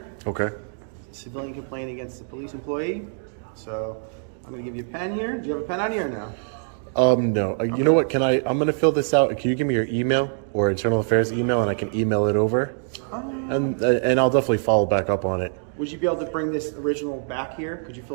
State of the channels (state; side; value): silent; left; digital silence